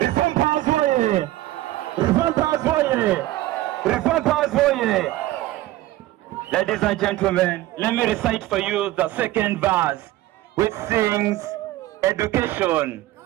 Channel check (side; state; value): left; quieter; 16.1 dB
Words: Powers Warrior! Reform Powers Warrior! Reform Powers Warrior! Ladies and gentlemen, let me recite for you the second verse, which sings education,